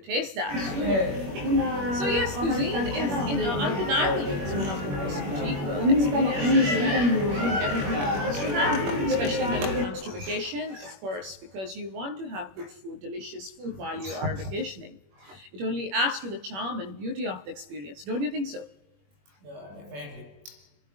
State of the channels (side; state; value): left; late; 21 ms